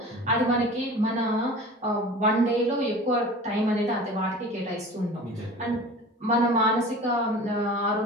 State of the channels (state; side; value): normal; both; correlation 0.39